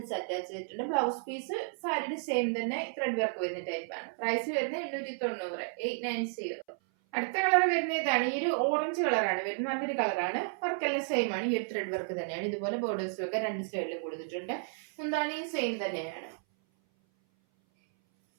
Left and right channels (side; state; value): left; silent; 56 dB below the other